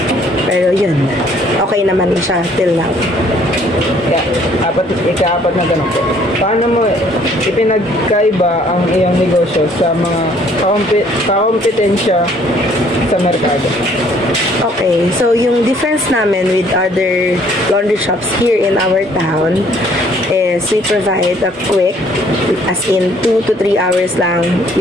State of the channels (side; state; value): both; normal; correlation 0.61